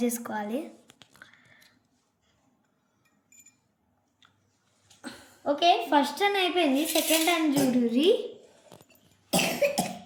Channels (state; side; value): identical; both; correlation 1.00